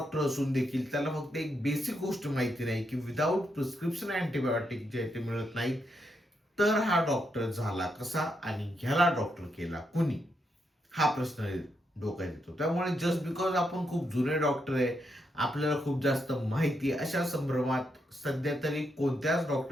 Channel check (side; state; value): both; normal; correlation 0.81